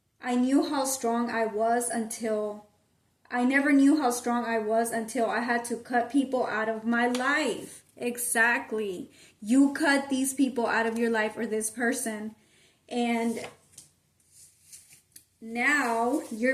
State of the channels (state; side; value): identical; both; correlation 1.00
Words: I knew how strong I was until I never knew how strong I was until I had to cut people out of my life. Exactly. You cut these people out of your life, or this person, and now